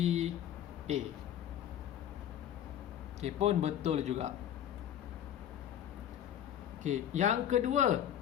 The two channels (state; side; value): quieter; right; 10.6 dB